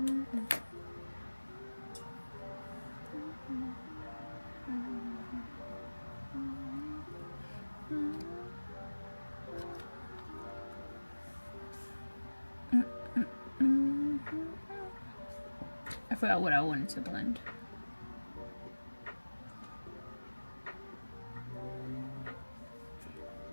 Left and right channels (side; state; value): both; inverted; correlation -1.00